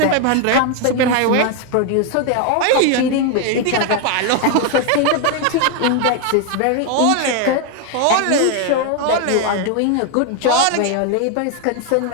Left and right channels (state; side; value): different; both; correlation 0.01